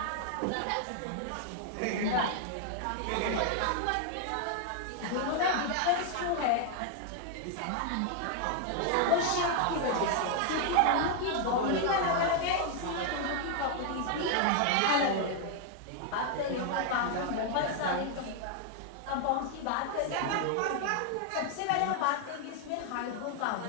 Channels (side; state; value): both; different; correlation 0.00